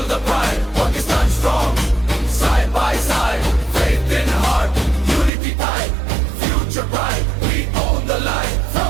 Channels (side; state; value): left; drops out; at 5.3 s